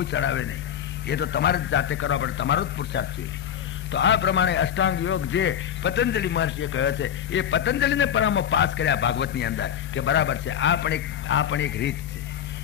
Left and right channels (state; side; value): quieter; right; 9.4 dB